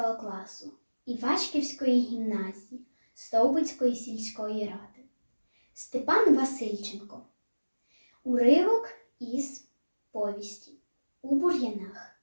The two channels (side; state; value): both; inverted; correlation -1.00